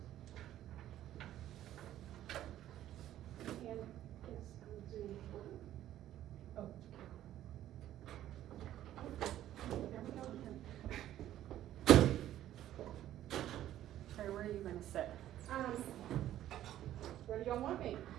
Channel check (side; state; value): left; quieter; 12.6 dB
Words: And yes, I'm Zoom. Oh. There we go again. Sorry, where are you gonna sit? Where do y'all want me?